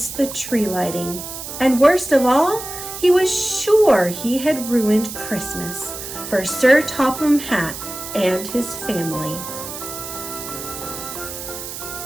the tree lighting, and worst of all, he was sure he had ruined Christmas for Sir Topham Hatt and his family.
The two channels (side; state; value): right; noise; hiss, 9 dB below the sound